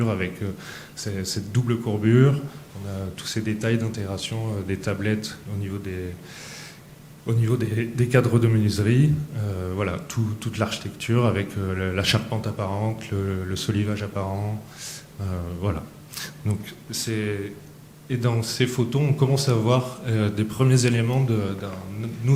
avec cette double courbure. On a tous ces détails d'intégration des tablettes au niveau des cadres de menuiserie. Voilà, toute l'architecture avec la charpente apparente, le solivage apparent. Voilà. Donc, et dans ces photos, on commence à voir des premiers éléments d'un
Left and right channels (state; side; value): identical; both; correlation 1.00